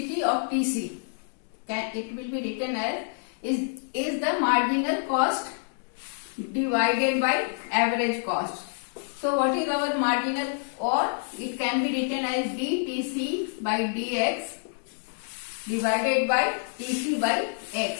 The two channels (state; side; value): silent; right; 60 dB below the other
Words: of TC, it will be written as is the marginal cost divided by average cost. So what is our marginal, or it can be written as dTC by dx divided by TC by